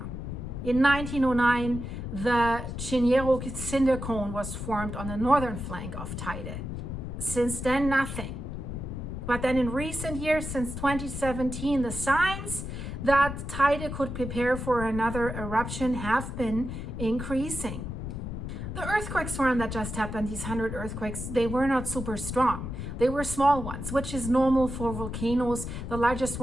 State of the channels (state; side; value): noise; left; rumble, 6 dB below the sound